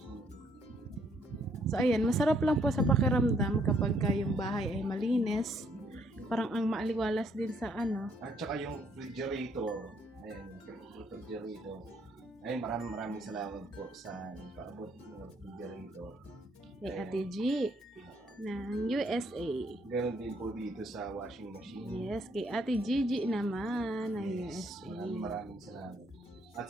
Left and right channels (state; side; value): normal; both; correlation 0.69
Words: So ayan, masarap lang po sa pakiramdam kapag yung bahay ay malinis. Parang ang maaliwalas din sa At saka yung refrigerator. Ayan, yung refrigerator. Ay, maraming salamat po sa nagpaabot ng refrigerator. kay Ate G ng USA. Ganon din po dito sa washing machine. Yes, kay Ate Gigi naman ng Yes, USA. maraming salamat. At